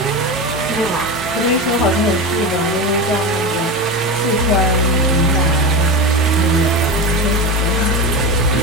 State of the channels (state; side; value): normal; both; correlation 0.22